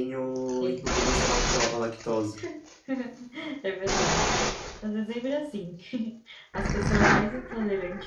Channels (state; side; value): identical; both; correlation 1.00